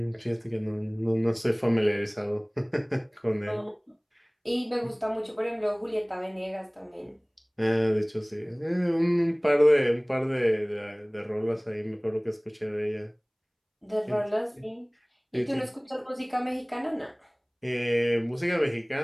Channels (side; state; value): both; identical; correlation 1.00